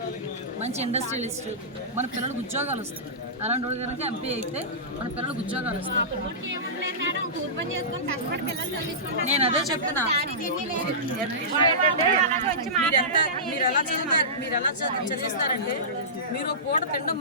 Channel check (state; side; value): normal; both; correlation -0.20